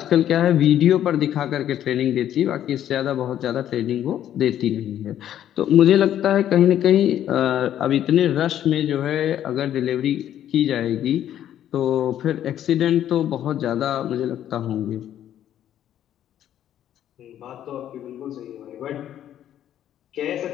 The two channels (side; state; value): right; quieter; 11.1 dB